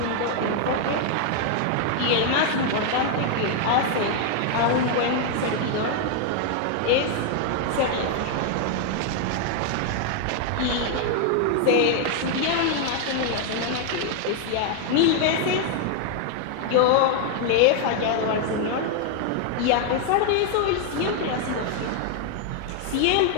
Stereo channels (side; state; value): both; different; correlation 0.00